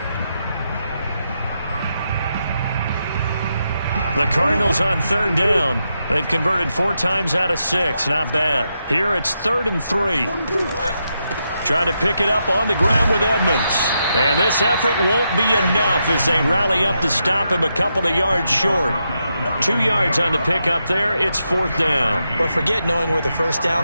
The Cardinals on 3rd down. They've converted 4 times out of 6. Not bad. Here it's 3rd and 3. Trying to pick it up on the ground with Edmonds. And this effort won't be enough as they rally up to stop him a couple of yards short. 2 yards on the pickup there. It's 4th down. But forget knowing where the 1st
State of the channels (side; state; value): both; inverted; correlation -0.84